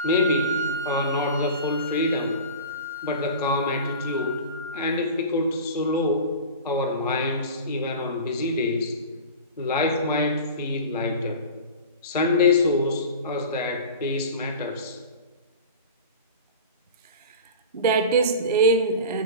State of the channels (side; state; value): both; inverted; correlation -0.33